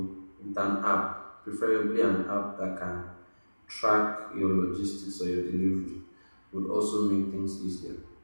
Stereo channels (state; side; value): inverted; both; correlation -1.00